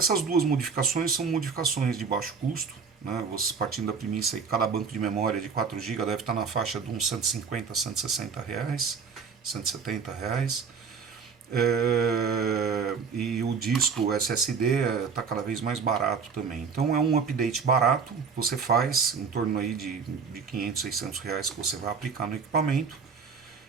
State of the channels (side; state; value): left; quieter; 5.7 dB